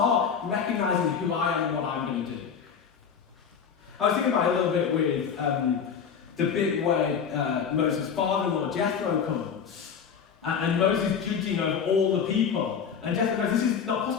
recognizing who I am and what I'm going to do. I was thinking about it a little bit with the bit where Moses' father-in-law Jethro comes and Moses judging over all the people. And Jethro goes, this is not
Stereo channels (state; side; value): quieter; right; 7.0 dB